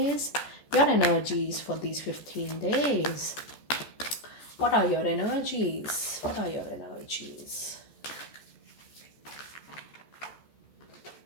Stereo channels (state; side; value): late; right; 14 ms